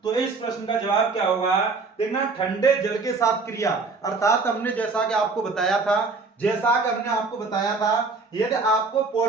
तो इस प्रश्न का जवाब क्या होगा? देखना, ठंडे जल के साथ क्रिया, अर्थात हमने जैसा कि आपको बताया था, यदि आपको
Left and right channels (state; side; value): quieter; left; 4.1 dB